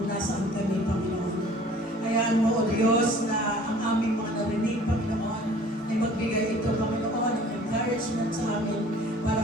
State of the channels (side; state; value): both; normal; correlation 0.50